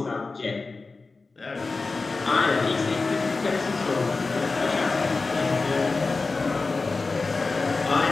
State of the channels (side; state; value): right; quieter; 3.9 dB